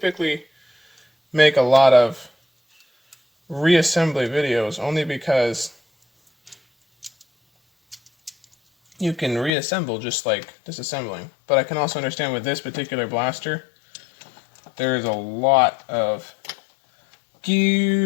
make a lot of reassembly videos only because you can reassemble just like disassembling. But I can also understand with this particular blaster, there is a lot of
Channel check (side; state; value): right; drops out; at 9.5 s